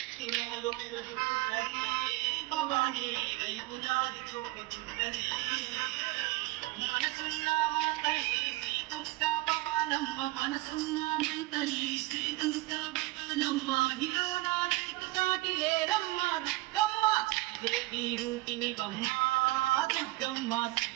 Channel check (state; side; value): quieter; left; 19.9 dB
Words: ఇనాలు పెరుగుతున్నది భవాని నీ వైపు దారి చూపుతున్నది మనసున్న మా తల్లి శ్రీ దుర్గా భవానమ్మ మనసున్న మా తల్లి శ్రీ దుర్గా భవానమ్మ ఇలో నా నీకు సాటి లేరమ్మ దుర్గమ్మ దేవి రూపిణి బమ్మ దుర్గమ్మ